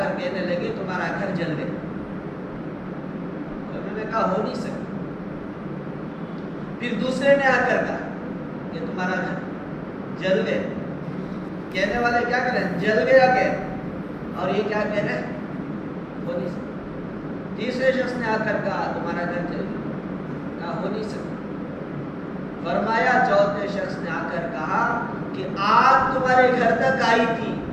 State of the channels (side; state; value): both; identical; correlation 1.00